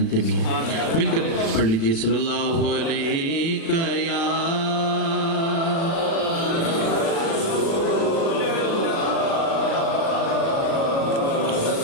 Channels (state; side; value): late; right; 36 ms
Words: بھی ہیں۔ مل کر پڑھ لیجئے، صلی اللہ علیہ یا